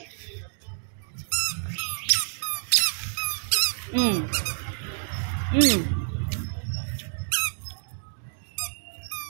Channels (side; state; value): left; silent; digital silence